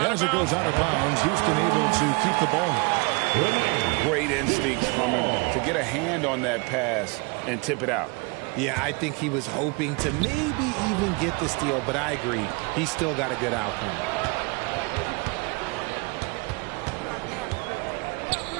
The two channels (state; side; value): quieter; left; 29.6 dB